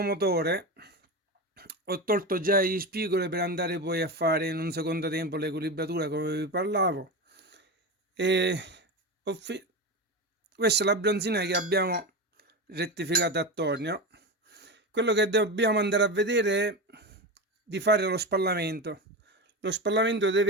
motore, ho tolto già gli spigoli per andare poi a fare in un secondo tempo l'equilibratura come vi parlavo. Questa è la bronzina che abbiamo rettificato attorno. Quello che dobbiamo andare a vedere è di fare lo spallamento. Lo spallamento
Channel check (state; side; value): normal; both; correlation 0.21